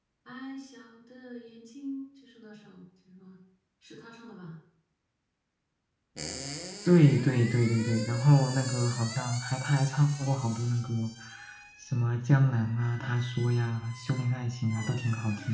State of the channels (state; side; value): identical; both; correlation 1.00